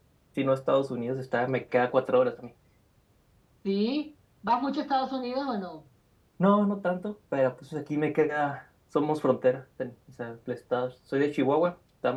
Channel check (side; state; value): both; identical; correlation 1.00